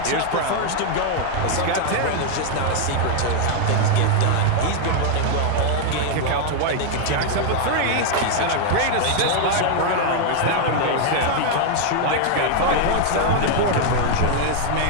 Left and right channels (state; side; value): different; both; correlation 0.00